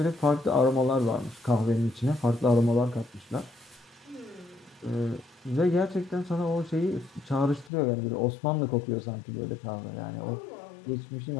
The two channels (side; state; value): right; drops out; at 7.7 s